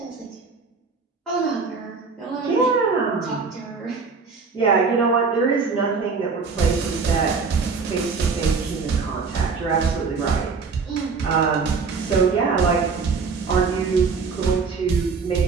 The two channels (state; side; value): quieter; left; 4.9 dB